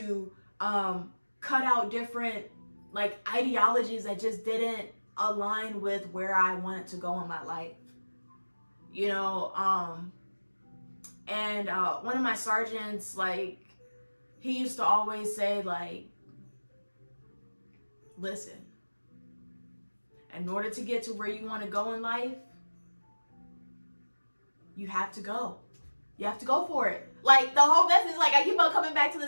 cut out different ideologies that just didn't align with where I wanted to go in my life. And one of my sergeants, he used to always say, listen, in order to get to where you want to go in life, you have to go. You have to go for it. The whole message, I keep on coming back to the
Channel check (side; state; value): both; inverted; correlation -1.00